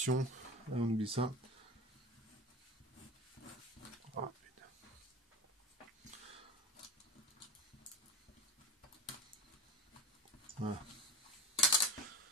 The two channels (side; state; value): both; normal; correlation 0.31